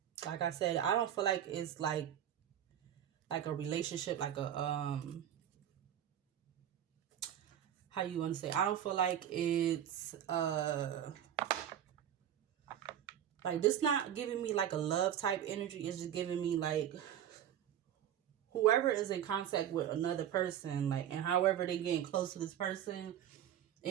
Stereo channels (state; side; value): quieter; left; 10.4 dB